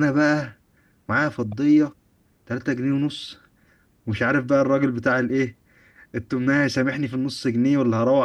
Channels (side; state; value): both; identical; correlation 1.00